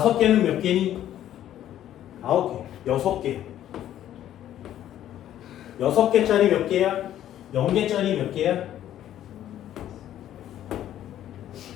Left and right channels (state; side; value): quieter; right; 11.8 dB